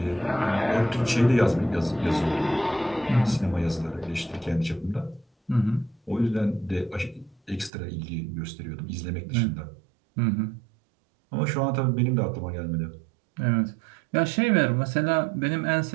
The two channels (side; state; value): left; drops out; at 7.7 s